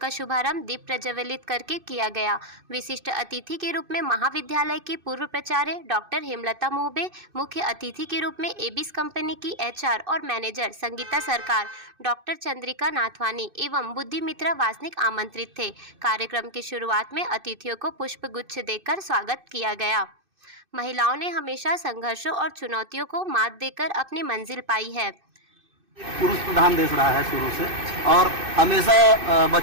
शुभारंभ दीप प्रज्वलित करके किया गया। विशिष्ट अतिथि के रूप में महाविद्यालय की पूर्व प्राचार्य डॉक्टर हेमलता मोहबे, मुख्य अतिथि के रूप में एबिस कंपनी की एचआर और मैनेजर संगीता सरकार, डॉक्टर चंद्रिका नाथवानी एवं बुद्धि मित्रा वासनिक आमंत्रित थे। कार्यक्रम की शुरुआत में अतिथियों को पुष्पगुच्छ देकर स्वागत किया गया। महिलाओं ने हमेशा संघर्षों और चुनौतियों को मात देकर अपनी मंजिल पाई है। पुरुष प्रधान देश रहा है शुरू से, और हमेशा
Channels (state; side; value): late; left; 2.6 ms